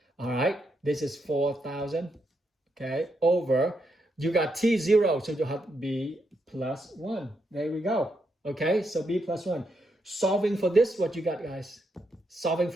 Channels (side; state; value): both; normal; correlation 0.80